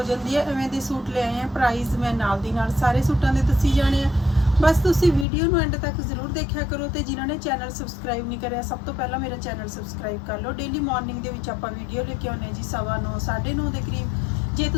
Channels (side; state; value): right; drops out; at 5.2 s